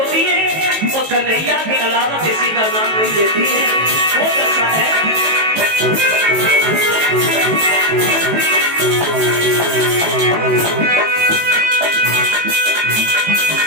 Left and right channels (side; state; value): left; late; 18 ms